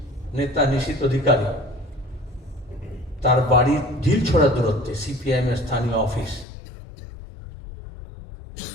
নেতা নিশীথ অধিকারী, তার বাড়ির ঢিল ছড়া দূরত্বে সিপিআইএম এর স্থানীয় অফিস,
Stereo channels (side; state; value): right; drops out; at 6.5 s